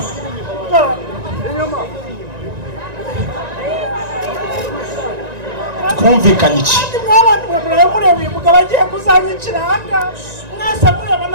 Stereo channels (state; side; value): late; left; 1.9 ms